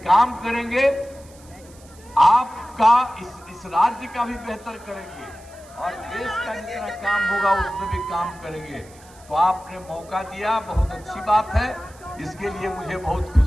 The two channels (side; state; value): right; noise; hiss, 25 dB below the sound